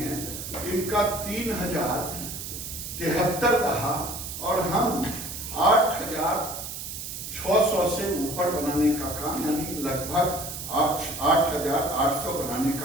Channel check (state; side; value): noise; right; hiss, 8 dB below the sound